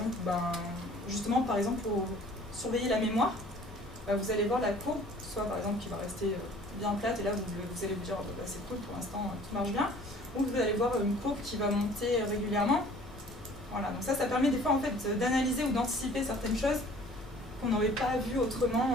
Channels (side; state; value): both; normal; correlation 0.51